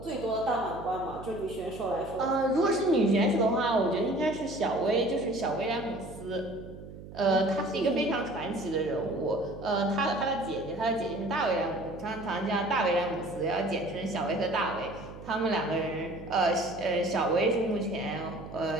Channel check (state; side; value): noise; right; hum, 14 dB below the sound